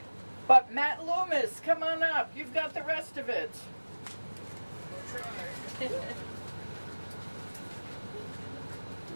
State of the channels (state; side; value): inverted; both; correlation -1.00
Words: but Matt Loomis, come on up. You've got the rest of it.